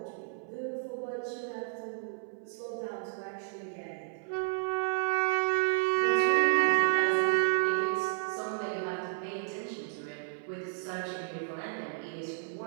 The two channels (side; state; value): left; silent; 57 dB below the other